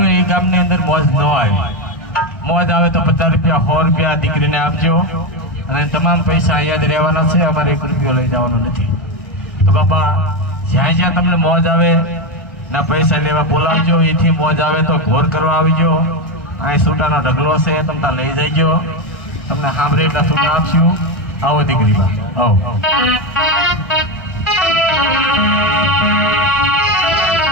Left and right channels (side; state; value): right; late; 1.6 ms